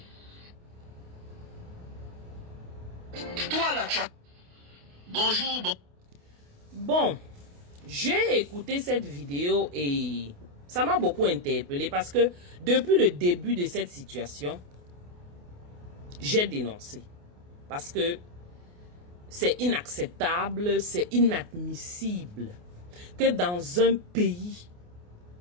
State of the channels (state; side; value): late; left; 28 ms